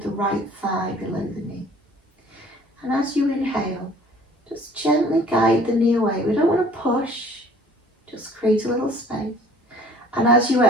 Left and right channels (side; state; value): both; normal; correlation 0.53